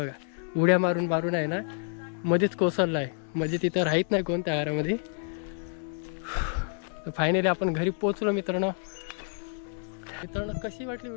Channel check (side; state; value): right; silent; 59 dB below the other